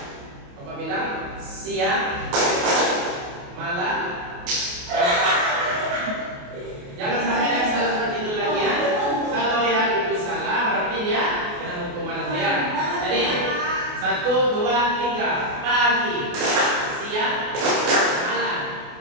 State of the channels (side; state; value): left; late; 28 ms